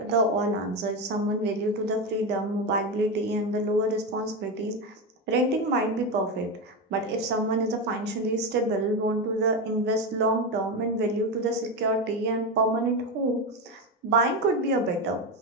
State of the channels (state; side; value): normal; both; correlation 0.14